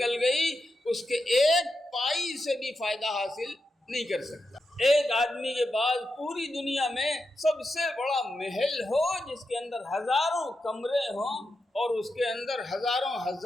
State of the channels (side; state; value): both; normal; correlation 0.87